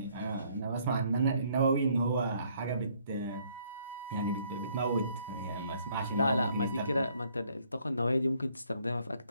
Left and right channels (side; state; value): both; inverted; correlation -0.65